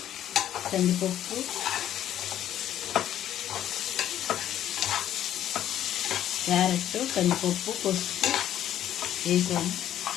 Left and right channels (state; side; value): quieter; right; 11.4 dB